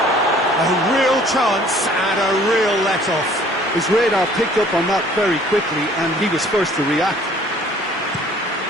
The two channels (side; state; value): both; normal; correlation 0.55